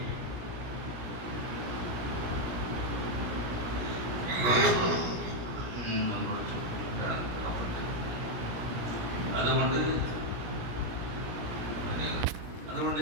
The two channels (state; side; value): late; left; 17 ms